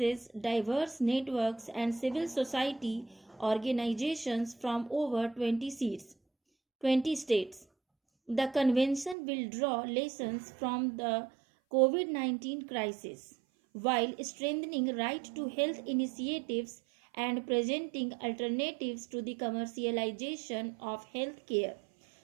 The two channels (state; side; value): drops out; left; at 9.2 s